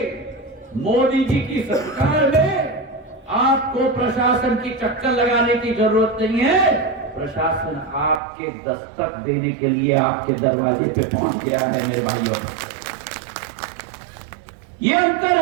मोदी जी की सरकार में आपको प्रशासन की चक्कर लगाने की जरूरत नहीं है, प्रशासन आपके दस्तक देने के लिए आपके दरवाजे पे पहुंच गया है मेरे भाइयों। ये अंतर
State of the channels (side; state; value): left; drops out; at 8.2 s